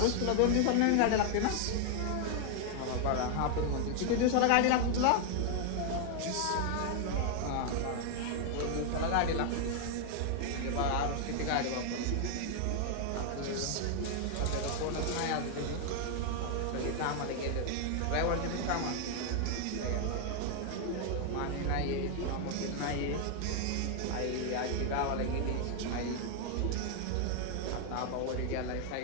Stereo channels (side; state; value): both; different; correlation 0.00